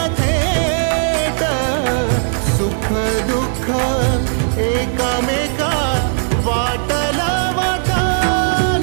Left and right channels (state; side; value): silent; left; 68 dB below the other